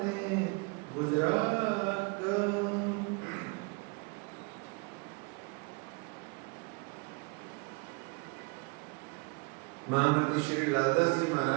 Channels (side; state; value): left; quieter; 31.8 dB